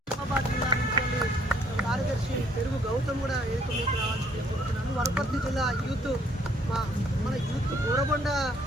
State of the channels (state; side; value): normal; both; correlation 0.64